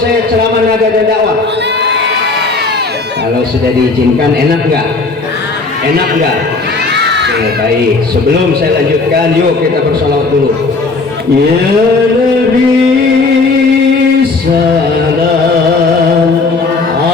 ceramah nada dan dakwah? Kalau sudah diizinkan, enak nggak? Enak nggak? Oke, baik. Sebelum saya lanjutkan, yuk kita bersalawat dulu. Ya Nabi salam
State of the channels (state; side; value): quieter; right; 3.8 dB